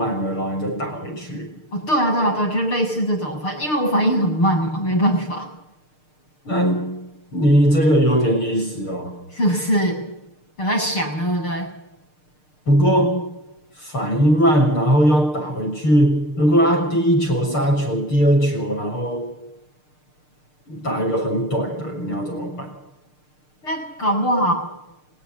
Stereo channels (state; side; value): late; right; 6.6 ms